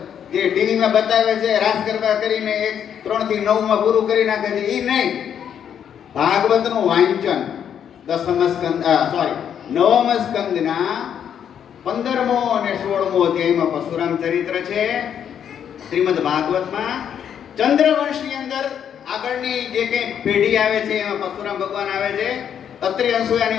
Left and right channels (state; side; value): quieter; right; 8.7 dB